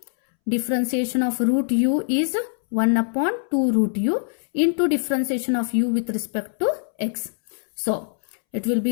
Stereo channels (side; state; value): right; silent; 63 dB below the other